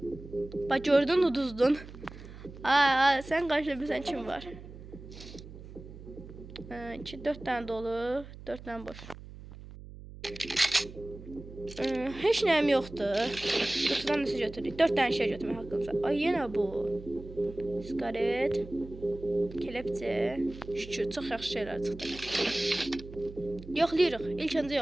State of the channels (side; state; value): right; noise; hum, 15 dB below the sound